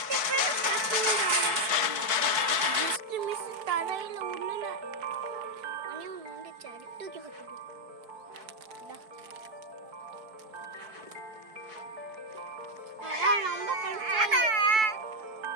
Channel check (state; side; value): late; left; 4.6 ms